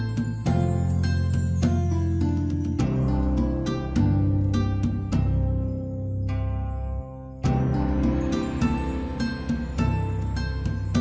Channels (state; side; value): identical; both; correlation 1.00